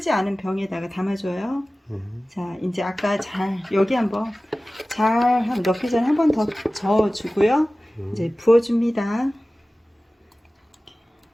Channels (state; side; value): normal; both; correlation 0.97